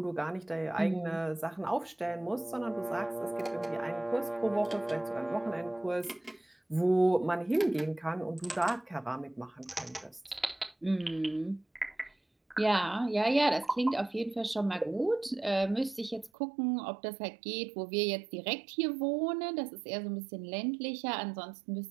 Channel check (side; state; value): left; drops out; at 16.3 s